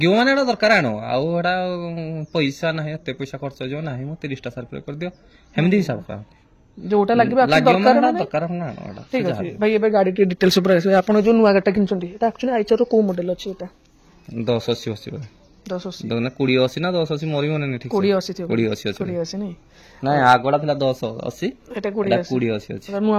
ମାନେ ଏଟା ଦରକାର ଆଣ, ଆଉ ଏଟା ପଇସା ନାହିଁ, ଏତେ ପଇସା ଖର୍ଚ୍ଚ ହେଇଯିବ ନାହିଁ, ମୁଁ 30ଟା ସାର୍ଫି କରିଦିଅ, ସେମିତି ହିସାବ କରନ୍ତି। ଯୋଉଟା ଲାଗିବ ଦରକାର ଠିକ ଅଛି। ଭାଇ ଏବେ ଗାଡି ଟିକେ ଡିଟେଲ୍ସ ଉପରେ ଆସିବେ, ଆପଣ ଯୋଉ ନୂଆ ଗାଡିଟା କିଣିଛନ୍ତି ଏଟା ଆକ୍ଚୁଆଲି ଆଇଚର କୋଉ ମଡେଲ ଅଛି? ଏଟା 1080 1080 2080 ନା 1080 ମୋର ବି ମନେ ନାହିଁ, ଠିକ 2080 ନାଇଁ? ନାଇଁ ଆଗଟା ଥିଲା 1080, ଏଟା 2080 ଅଛି। ନୂଆ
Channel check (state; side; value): identical; both; correlation 1.00